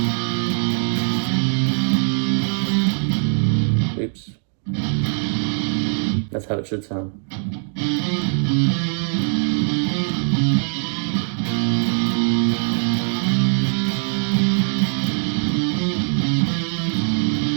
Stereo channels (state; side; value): silent; left; digital silence